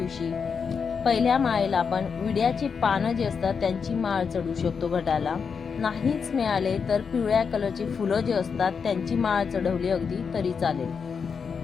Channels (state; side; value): quieter; right; 6.0 dB